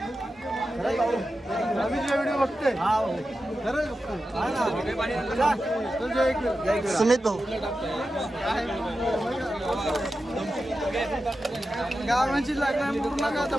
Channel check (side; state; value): both; normal; correlation 0.91